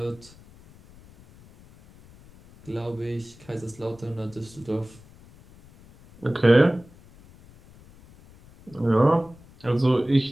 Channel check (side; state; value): left; noise; rumble, 24 dB below the sound